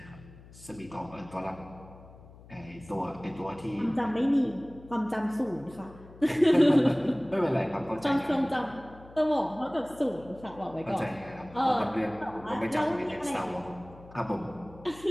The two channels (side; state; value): left; noise; hum, 20 dB below the sound